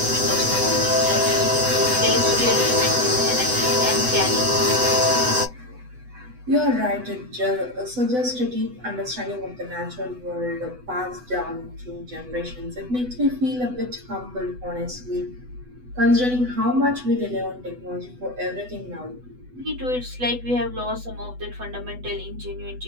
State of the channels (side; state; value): left; late; 8.0 ms